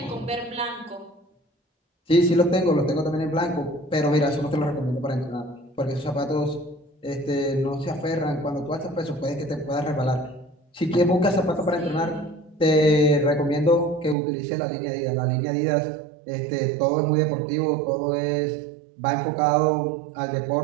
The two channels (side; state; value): left; drops out; at 14.2 s